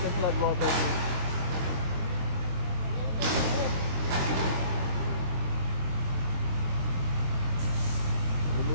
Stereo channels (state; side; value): late; left; 23 ms